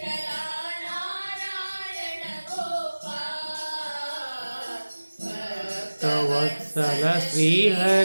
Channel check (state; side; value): inverted; both; correlation -1.00